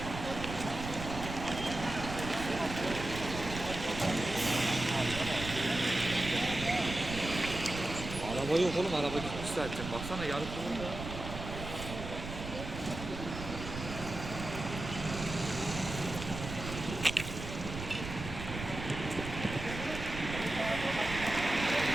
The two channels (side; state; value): right; noise; rumble, 8 dB below the sound